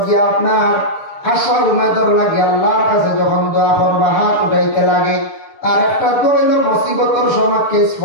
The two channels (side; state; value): right; late; 6.7 ms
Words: গিয়া আপনার আশার উমেদর লাগে আল্লাহর কাছে যখন দোয়া করবা হাত উঠাইতে লাগে। আর একটা দোয়া হইল মুসিবতর সময় কেস